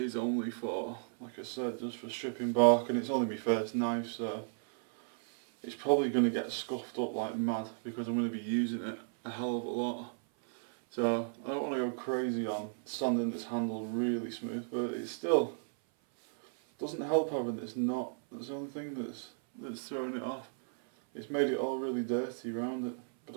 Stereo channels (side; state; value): left; silent; 55 dB below the other